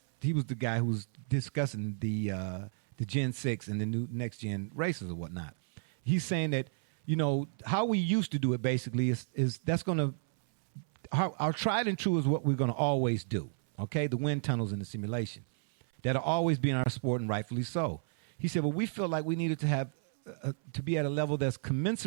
he was the guy who was discussing the Gen 6 and the new next gen races or whatnot. He's saying that, how we used to do it basically is that's going to, our tried and true is what we're going to always do, okay? The wind tunnels and the simulation. That'll always be in our sport, and rightfully so. He said, well, we feel like we needed to have to be at a level that's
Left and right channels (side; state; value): left; silent; 56 dB below the other